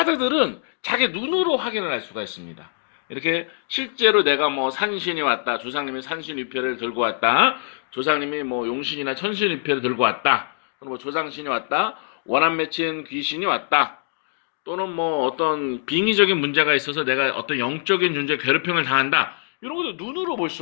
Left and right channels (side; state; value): right; silent; digital silence